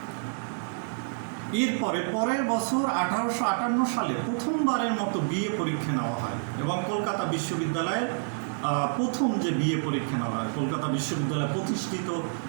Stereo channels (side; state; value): left; silent; digital silence